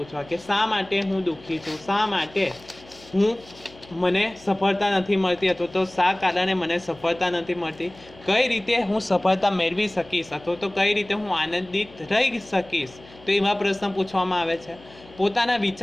કે શા માટે હું દુઃખી છું, શા માટે મને સફળતા નથી મળતી અથવા તો શા કારણે મને સફળતા નથી મળતી, કઈ રીતે હું સફળતા મેળવી શકીશ અથવા તો કઈ રીતે હું આનંદિત રહી શકીશ. તો એવા પ્રશ્ન પૂછવામાં આવે છે. પોતાના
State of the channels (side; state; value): left; noise; hum, 23 dB below the sound